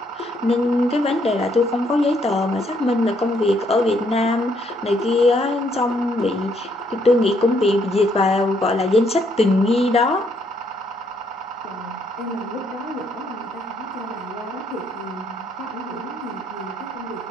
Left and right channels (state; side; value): normal; both; correlation 0.71